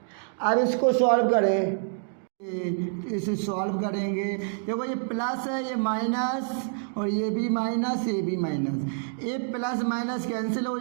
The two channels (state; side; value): silent; left; digital silence